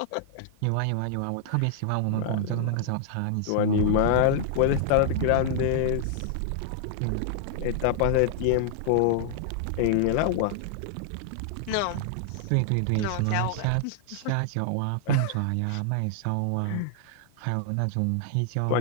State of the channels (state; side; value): different; both; correlation -0.01